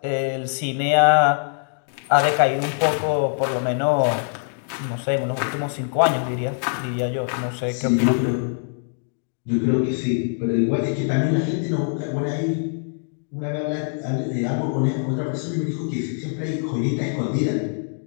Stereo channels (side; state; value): right; silent; digital silence